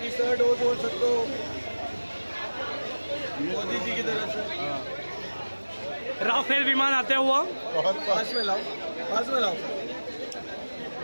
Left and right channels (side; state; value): both; inverted; correlation -1.00